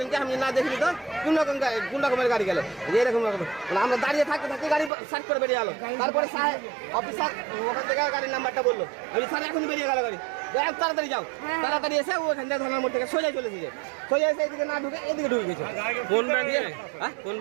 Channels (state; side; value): drops out; left; at 4.9 s